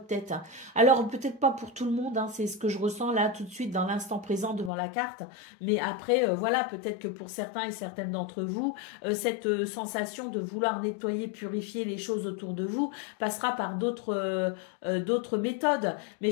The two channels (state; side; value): drops out; right; at 4.7 s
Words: tête. Alors, peut-être pas pour tout le monde, hein, c'est ce que je ressens là tout de suite dans l'instant présent devant la carte, mais après, voilà, peut-être que pour certains et certaines d'entre vous, cette sensation de vouloir nettoyer, purifier les choses autour de vous passera par d'autres méthodes. Mais